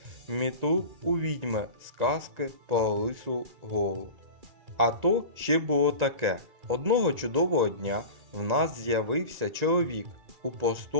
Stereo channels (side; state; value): left; late; 1.9 ms